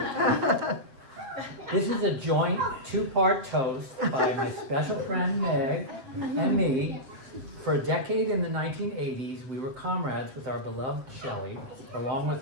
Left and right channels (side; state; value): left; late; 7.8 ms